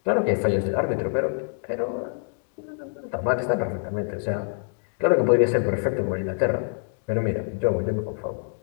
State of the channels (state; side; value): silent; right; digital silence